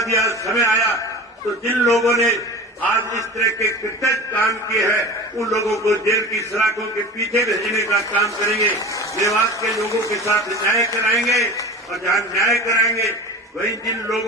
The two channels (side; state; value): both; normal; correlation 0.34